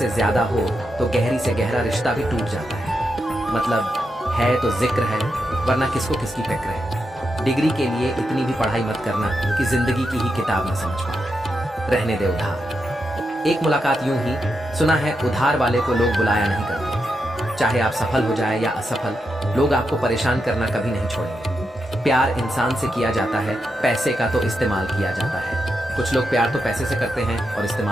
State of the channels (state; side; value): normal; both; correlation 0.86